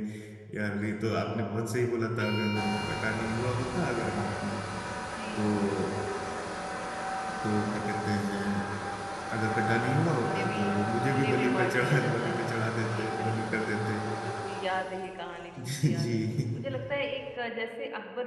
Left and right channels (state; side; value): identical; both; correlation 1.00